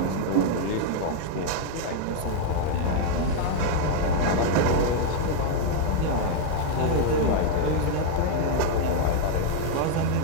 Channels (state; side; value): different; both; correlation 0.00